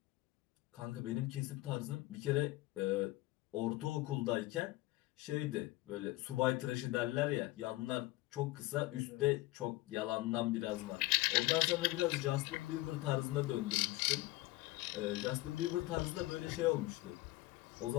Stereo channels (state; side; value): quieter; right; 19.2 dB